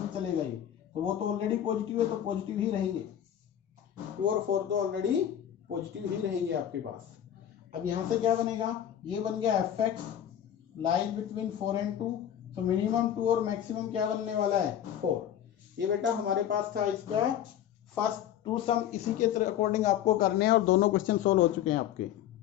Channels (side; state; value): right; quieter; 10.4 dB